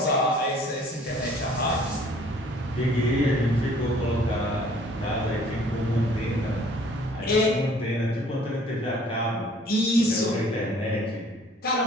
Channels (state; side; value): normal; both; correlation 0.55